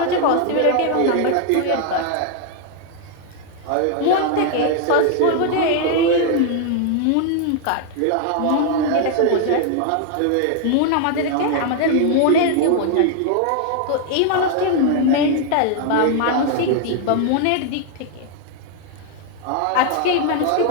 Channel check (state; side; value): different; both; correlation 0.00